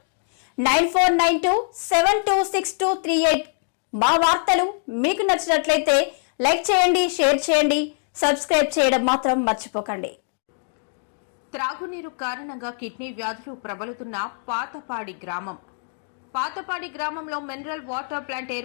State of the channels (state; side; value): silent; right; digital silence